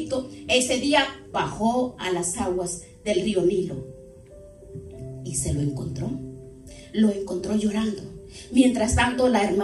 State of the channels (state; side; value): identical; both; correlation 1.00